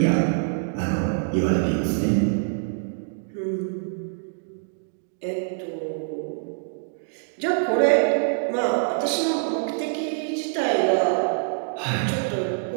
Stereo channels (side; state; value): left; silent; digital silence